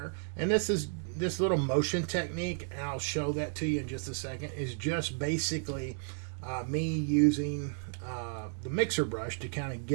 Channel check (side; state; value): left; silent; 56 dB below the other